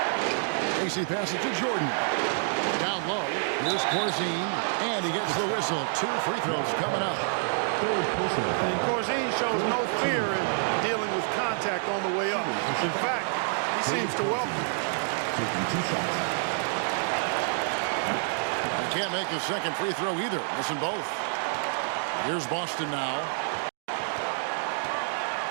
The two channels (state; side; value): silent; left; 59 dB below the other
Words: Macy passes to Jordan. Down low. Here's Corzine. And he gets the whistle. 2 free throws coming up. And Corzine shows no fear in dealing with contact on the way up. In fact, he seems to welcome it. Taking 2 shots. He can't make the second free throw either. Missing both. Here's Boston now.